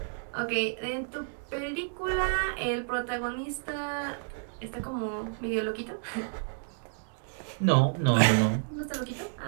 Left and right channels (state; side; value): silent; left; digital silence